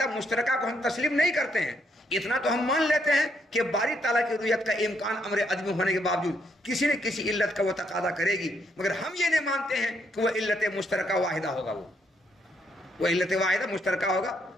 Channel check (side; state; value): both; normal; correlation 0.74